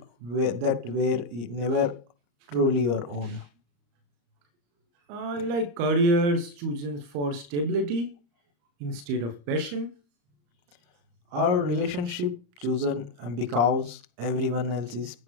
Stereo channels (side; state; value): left; late; 34 ms